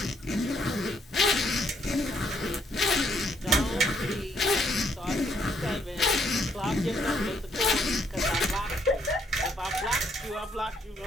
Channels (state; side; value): normal; both; correlation 0.70